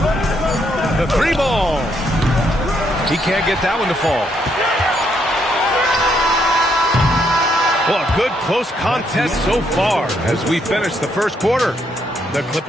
can't get that one to fall. Well, a good close contest so far as we finish the first quarter. The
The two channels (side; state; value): both; normal; correlation 0.74